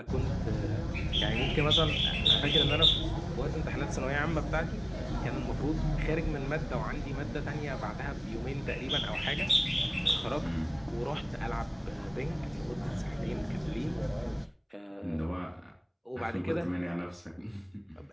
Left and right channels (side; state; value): both; identical; correlation 1.00